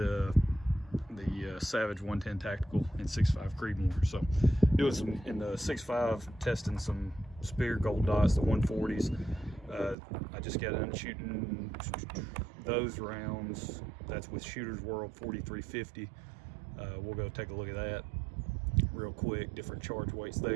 Savage 110 Tactical in 6.5 Creedmoor. So doing some in the 6.5, testing some Speer Gold Dots, the 140s. I just got done shooting those rounds. That's with Shooter's World 4350. We'll go take a look at that real quick, different charge weights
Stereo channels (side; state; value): left; drops out; at 10.0 s